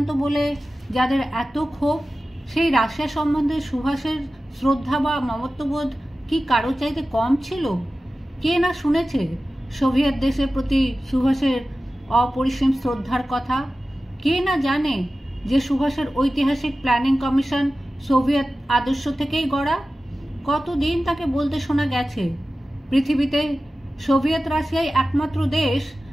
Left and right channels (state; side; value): normal; both; correlation 0.95